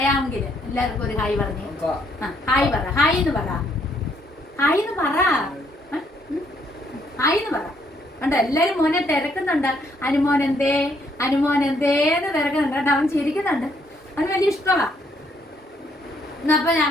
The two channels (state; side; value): normal; both; correlation 0.70